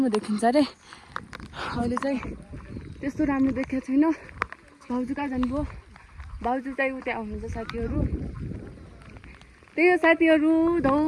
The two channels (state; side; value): identical; both; correlation 1.00